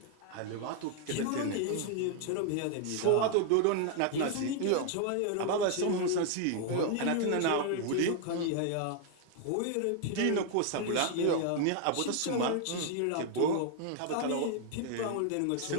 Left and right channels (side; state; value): both; different; correlation 0.00